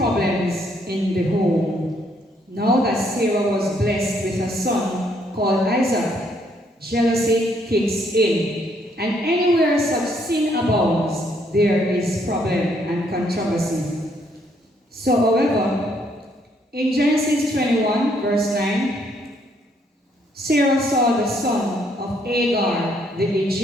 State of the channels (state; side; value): normal; both; correlation 0.70